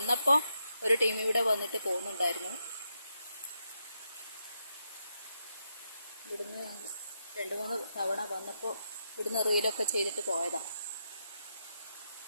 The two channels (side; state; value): both; inverted; correlation -0.83